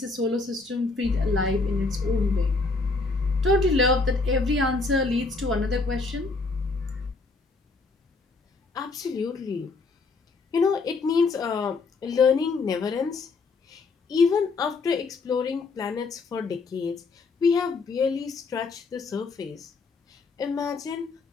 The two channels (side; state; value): right; quieter; 4.0 dB